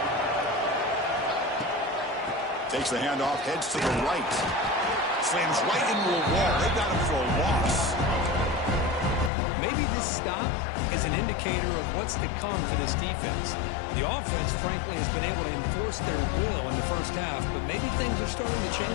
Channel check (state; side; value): drops out; right; at 9.3 s